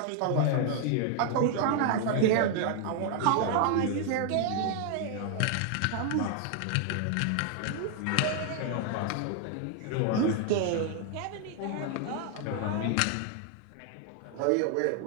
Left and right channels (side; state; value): both; different; correlation 0.00